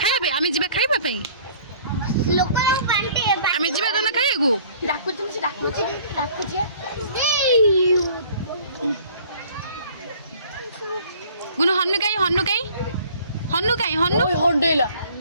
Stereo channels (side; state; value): both; inverted; correlation -0.53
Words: खाइबे आमी जीवा खाइबा पई लोकन पांटे आमी जीवा दोना खाइगु डाकुछि गुनु हन्नु काई हंडेला